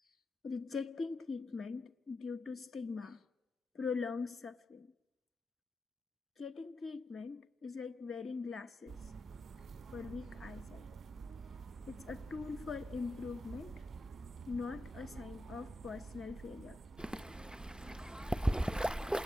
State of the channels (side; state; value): both; normal; correlation 0.89